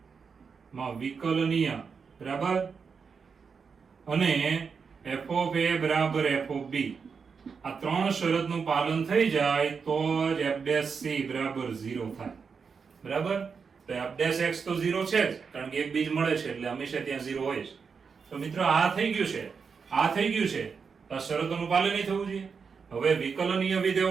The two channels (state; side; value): quieter; left; 5.7 dB